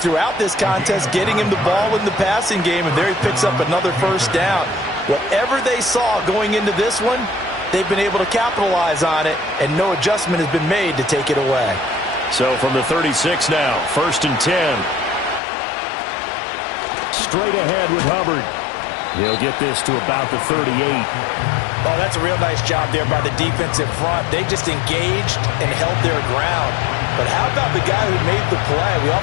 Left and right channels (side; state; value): right; drops out; at 15.4 s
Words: this contest getting him the ball in the passing game, and there he picks up another 1st down. Whatever they saw going into this one, they've been able to capitalize on it, and no adjustment has been made to take it away. So from the 36 now, 1st and 10. Straight ahead with Hubbard. He'll get this to about the 38. Oh, that's a real nice job there by the defensive front. They just engaged and held their ground. But how about the guy who made the play? We